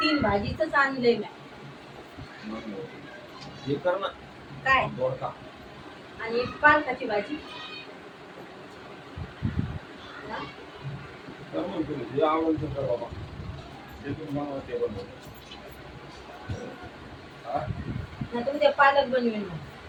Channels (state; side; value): identical; both; correlation 1.00